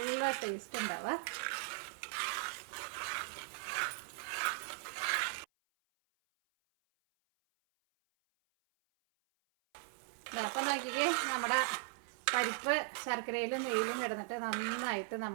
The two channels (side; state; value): left; silent; 52 dB below the other